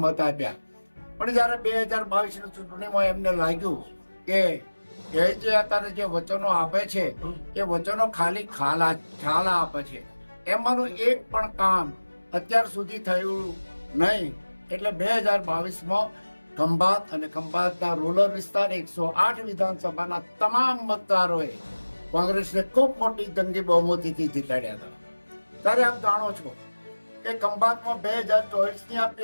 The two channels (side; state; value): both; inverted; correlation -1.00